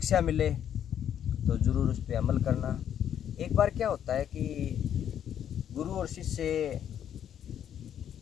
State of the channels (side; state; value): right; quieter; 9.6 dB